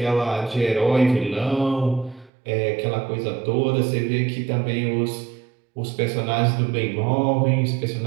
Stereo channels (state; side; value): drops out; left; at 2.3 s